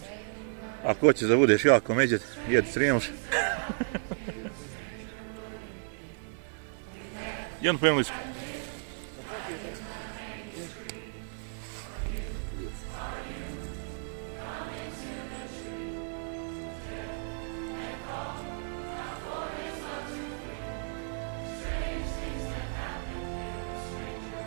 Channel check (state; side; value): silent; left; digital silence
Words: Ako hoćeš da budeš jako međet, jedi Srijemš. Jednu po englesku.